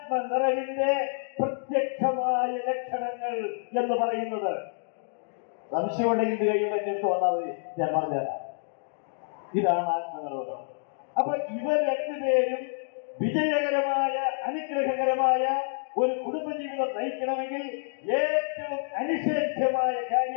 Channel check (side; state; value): right; silent; digital silence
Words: പ്രത്യക്ഷമായ ലക്ഷണങ്ങൾ എന്ന് പറയുന്നത്. സംശയമുണ്ടെങ്കിൽ കഴിയുമ്പോൾ എന്റെ അടുത്ത് വന്നാൽ മതി, ഞാൻ പറഞ്ഞുതരാം. ഇതാണ് ആത്മനിർഭരം. അപ്പൊ ഇവർ രണ്ടുപേരും വിജയകരമായ, അനുഗ്രഹകരമായ ഒരു കുടുംബജീവിതം നയിക്കണമെങ്കിൽ ഏറ്റവും അനിഷേധ്യമായ